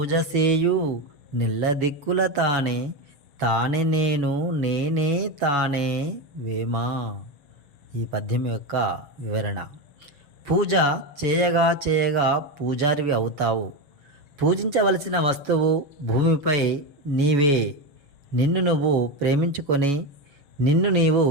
సేయు నిల్ల దిక్కుల తానే తానే నేను నేనే తానే వేమా. ఈ పద్యం యొక్క వివరణ. పూజ చేయగా చేయగా పూజారివి అవుతావు. పూజించవలసిన వస్తువు భూమిపై నీవే. నిన్ను నువ్వు ప్రేమించుకొని, నిన్ను నీవు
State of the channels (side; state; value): left; late; 7.0 ms